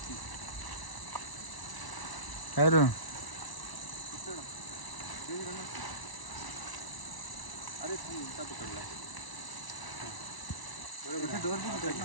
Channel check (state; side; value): late; right; 1.1 ms